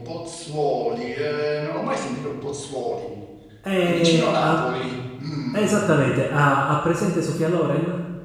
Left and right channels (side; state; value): both; identical; correlation 1.00